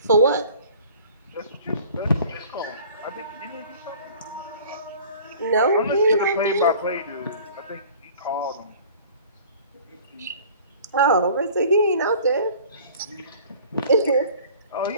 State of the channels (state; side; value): inverted; both; correlation -0.47